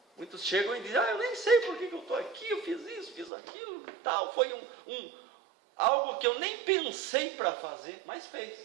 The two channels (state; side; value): drops out; left; at 3.3 s